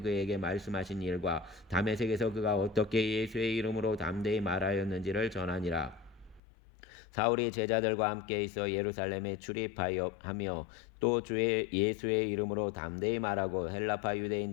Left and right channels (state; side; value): drops out; right; at 6.4 s